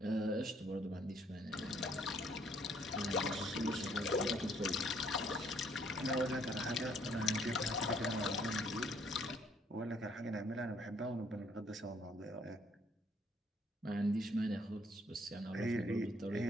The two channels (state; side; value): normal; both; correlation 0.66